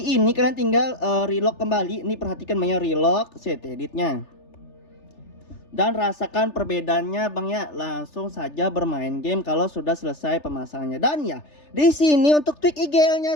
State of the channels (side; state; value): right; late; 3.4 ms